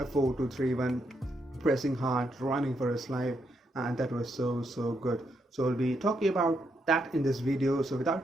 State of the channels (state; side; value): normal; both; correlation 0.79